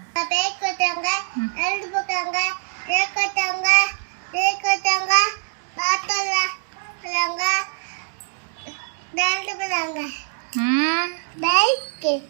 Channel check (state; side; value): silent; left; digital silence